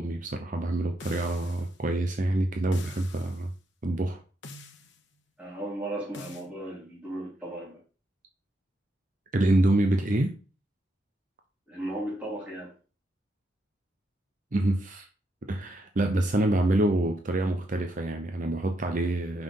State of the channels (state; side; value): normal; both; correlation 0.79